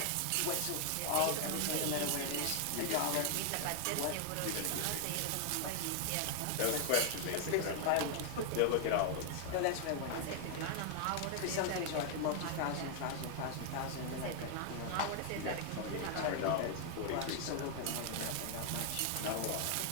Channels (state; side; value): different; both; correlation 0.00